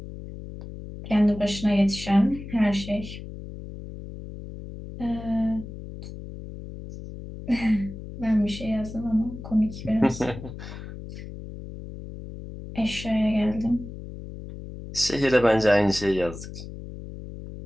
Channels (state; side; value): noise; left; hum, 12 dB below the sound